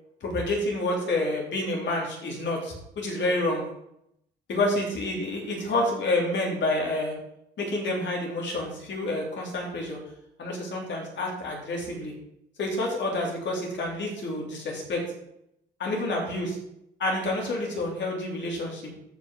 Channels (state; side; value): normal; both; correlation 0.38